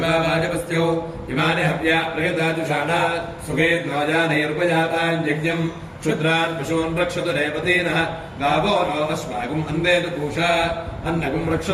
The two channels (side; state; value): both; identical; correlation 1.00